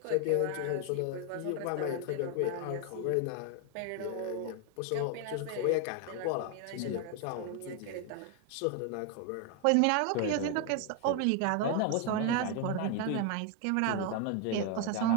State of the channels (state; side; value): different; both; correlation 0.01